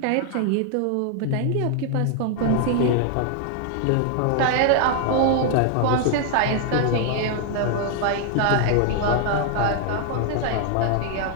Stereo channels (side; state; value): both; different; correlation 0.00